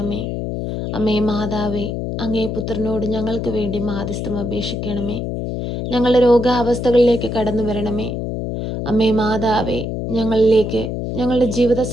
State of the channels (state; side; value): noise; left; hum, 3 dB below the sound